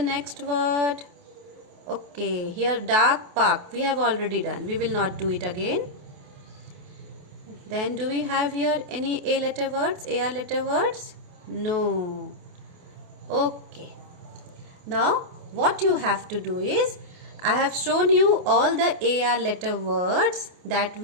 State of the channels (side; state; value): left; late; 28 ms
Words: word? Okay, here dark, park, we have already done, we will not do it again. Then do we have here any A letter words, AR letter words? No. Okay. Now what you have to do is, I have shown you all the AR letter words that